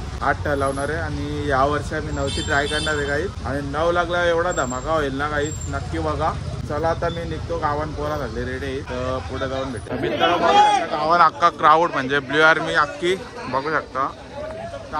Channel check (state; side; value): identical; both; correlation 1.00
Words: 8 ठरवणार आहे. आणि या वर्षी आम्ही 9ची ट्राय करणार आहे काहीच. आणि 9 लागला एवढा धमाका होईल ना काहीच, नक्की बघा. चला आता मी निघतो. गावान पोरा झाले रेडी, तर पुढे जाऊन भेटतो. मित्रांनो गावान अख्खा क्राऊड म्हणजे ब्ल्यू आर्मी अख्खी बघू शकता.